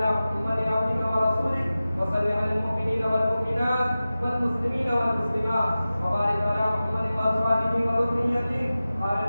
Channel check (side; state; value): both; inverted; correlation -0.95